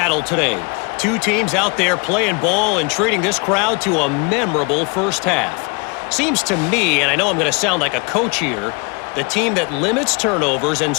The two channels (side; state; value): right; quieter; 31.8 dB